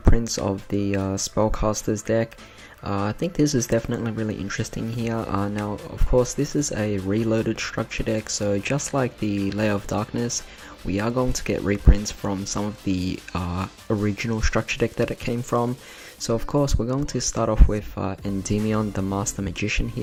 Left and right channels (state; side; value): identical; both; correlation 1.00